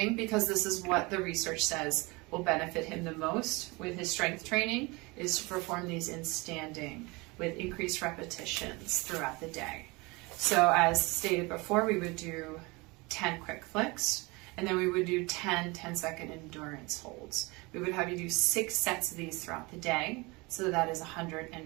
because this is what the research says will benefit him the most with his strength training, is to perform these in standing with increased repetitions throughout the day. So as stated before, we would do 10 quick flicks, and then we would do 10 10-second endurance holds. We would have you do 6 sets of these throughout the day, so that is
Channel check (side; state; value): left; quieter; 25.3 dB